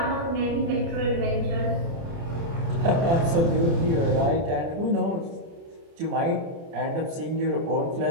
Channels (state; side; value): late; left; 30 ms